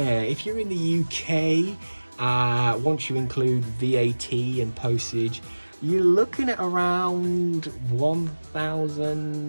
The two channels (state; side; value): inverted; both; correlation -1.00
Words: if you're in the UK, once you include VAT and postage, you're looking at around